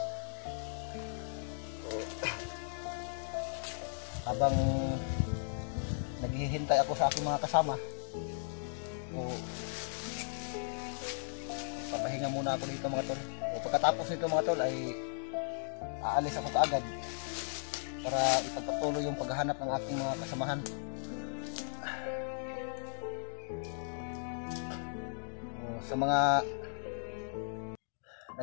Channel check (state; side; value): silent; right; digital silence